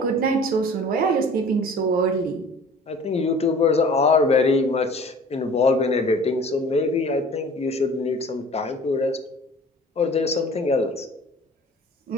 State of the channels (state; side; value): normal; both; correlation 0.46